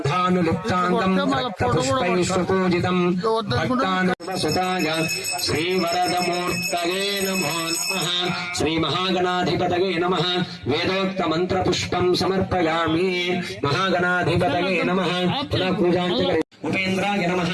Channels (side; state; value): both; identical; correlation 1.00